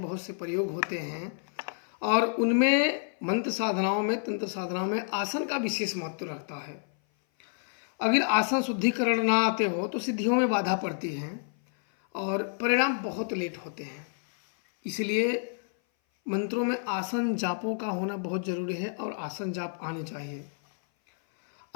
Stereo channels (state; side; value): silent; right; 56 dB below the other